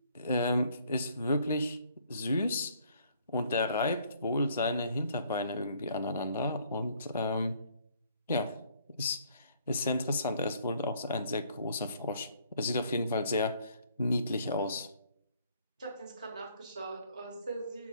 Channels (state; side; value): inverted; both; correlation -0.63